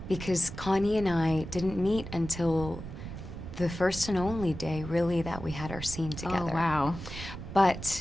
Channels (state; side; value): noise; right; rumble, 10 dB below the sound